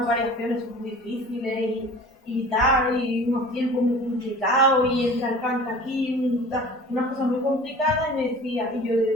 variaciones muy difíciles y tal, y unos tiempos muy complicados, y entra el canto aquí, unas cosas muy complicadas, y me decía, y yo le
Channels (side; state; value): both; normal; correlation 0.42